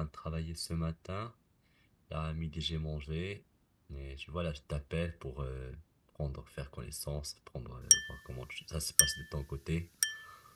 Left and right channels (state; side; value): identical; both; correlation 1.00